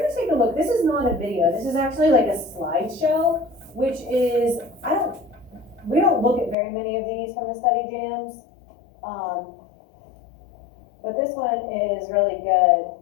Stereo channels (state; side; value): drops out; right; at 6.6 s